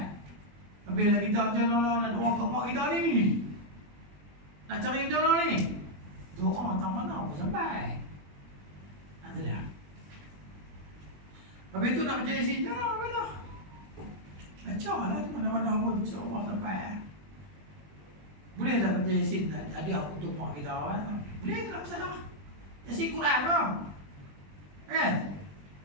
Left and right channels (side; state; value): left; late; 20 ms